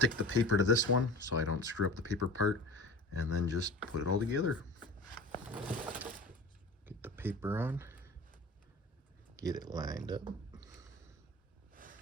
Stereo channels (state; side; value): normal; both; correlation 0.37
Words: the paper to this one so I don't screw up the paper part, and then just put it all together. Get the paper on. Get it lined up.